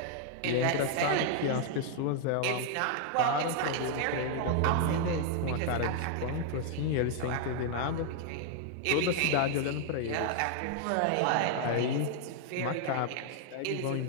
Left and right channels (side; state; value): both; different; correlation 0.00